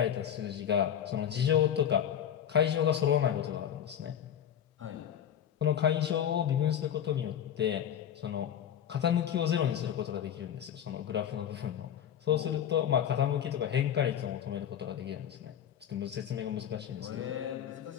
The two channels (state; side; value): quieter; right; 9.5 dB